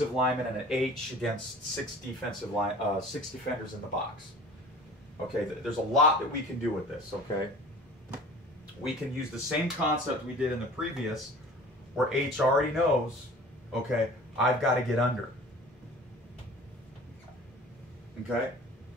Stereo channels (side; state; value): both; normal; correlation 0.43